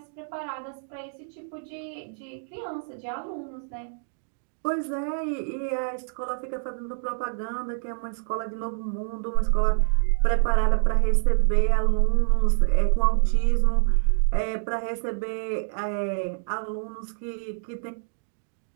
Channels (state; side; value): silent; left; digital silence